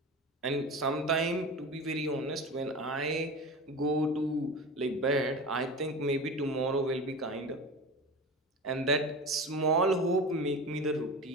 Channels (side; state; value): both; normal; correlation 0.30